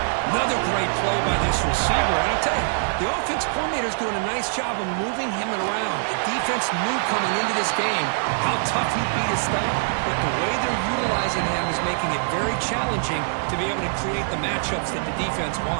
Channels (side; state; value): left; silent; digital silence